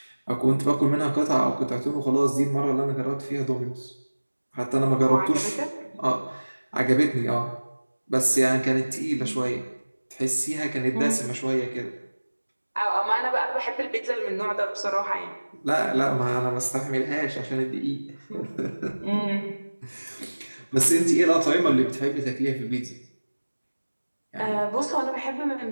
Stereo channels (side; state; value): both; inverted; correlation -1.00